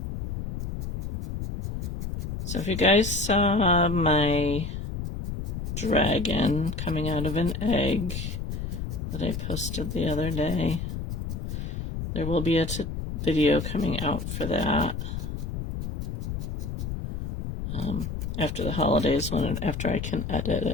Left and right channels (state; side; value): noise; left; rumble, 5 dB below the sound